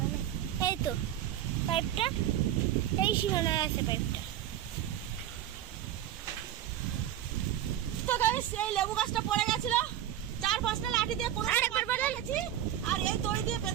না, এই তো পাইপটা এই সীমানায় আছে পাইপটা। তো গাইস এই লেবু গাছটা পড়ে গেছিল, 4-5টা লাঠি দিয়ে কোনো রেখেছি আর এই দড়ি দিয়ে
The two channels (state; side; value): quieter; left; 11.6 dB